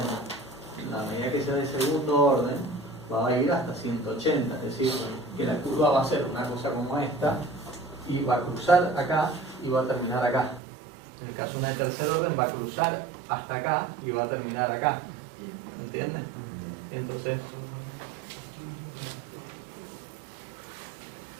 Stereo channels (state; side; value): drops out; left; at 10.6 s